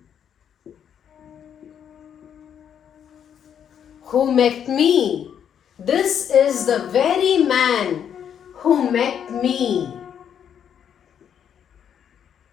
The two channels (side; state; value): right; quieter; 8.6 dB